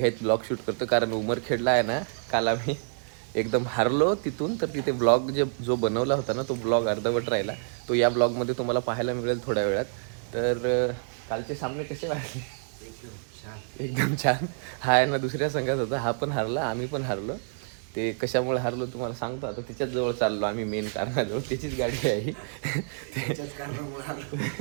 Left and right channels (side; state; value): left; silent; digital silence